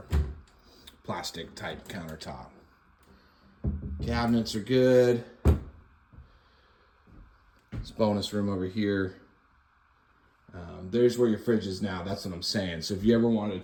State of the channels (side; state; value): both; identical; correlation 1.00